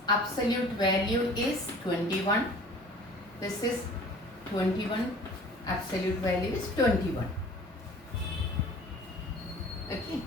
absolute value is 21. This is 21. Absolute value is 21. Okay.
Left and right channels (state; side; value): normal; both; correlation 0.47